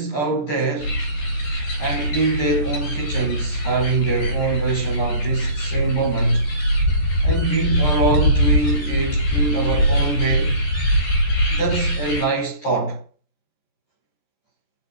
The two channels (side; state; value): right; late; 14 ms